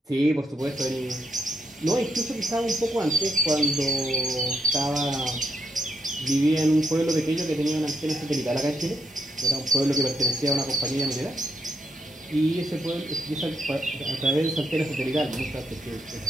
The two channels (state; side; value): normal; both; correlation 0.78